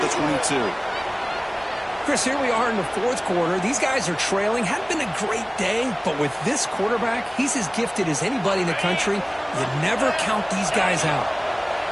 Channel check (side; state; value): both; identical; correlation 1.00